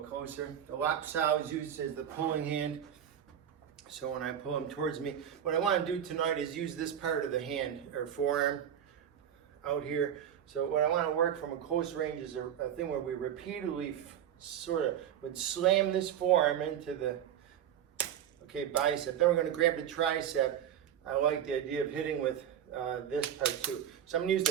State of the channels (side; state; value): left; quieter; 9.7 dB